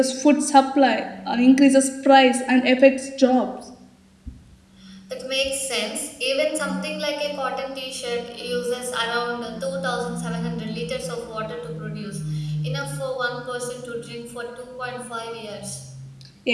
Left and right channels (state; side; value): identical; both; correlation 1.00